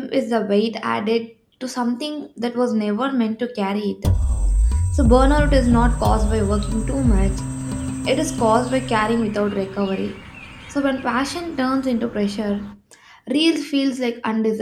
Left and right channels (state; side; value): identical; both; correlation 1.00